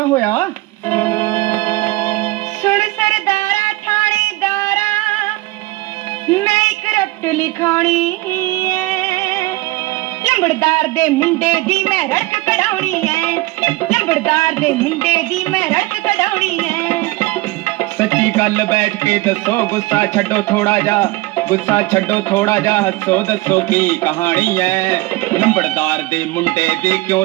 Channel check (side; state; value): left; quieter; 20.2 dB